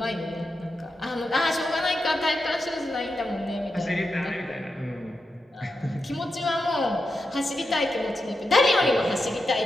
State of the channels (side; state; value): both; normal; correlation 0.88